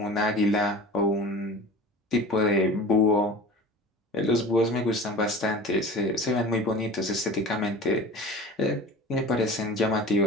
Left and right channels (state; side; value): normal; both; correlation 0.38